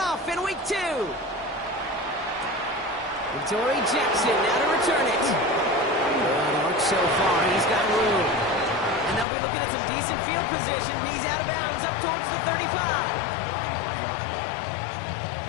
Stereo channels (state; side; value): drops out; right; at 9.2 s